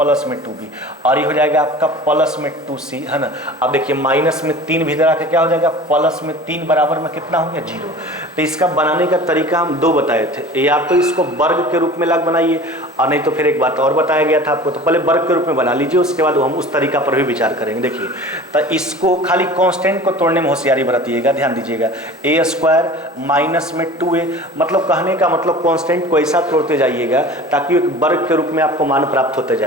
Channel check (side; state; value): both; normal; correlation 0.40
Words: में 2b, और ये हो जाएगा आपका प्लस में 2c, है ना। अब देखिए माइनस में 3 भी इधर आके क्या हो जाएगा प्लस में 3 बराबर में कितना हो गया 0। तो इसका बनाने का तरीका हम 2 बताए थे, या तो इसको वर्ग के रूप में लग बनाइए, और नहीं तो फिर एक बात और बताया गया था आपको, तो पहले वर्ग के रूप में बना लीजिए, उसके बाद हम उस तरीका पर भी विचार करेंगे। देखिए तो इसको खाली कांस्टेंट को तोड़ने में होशियारी बरतिएगा, ध्यान दीजिएगा। a² माइनस में 2a, मतलब कहने का मतलब कांस्टेंट को ऐसा तोड़ते जाइएगा ताकि एक वर्ग के रूप में आपको मान प्राप्त होते